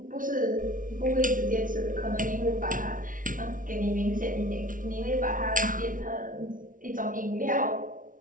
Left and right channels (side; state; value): left; late; 0.38 ms